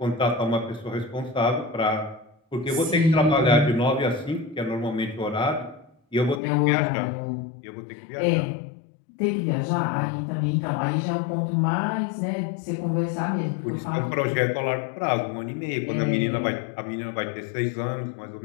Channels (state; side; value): drops out; right; at 6.4 s